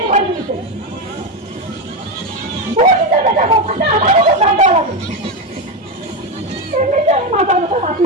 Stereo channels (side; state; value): both; normal; correlation 0.12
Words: করে দিয়েছে বলতে দেখা কথা আমারও তো কাঁদা লাগে এমনিতে আমি মাথা ব্যথা রাখি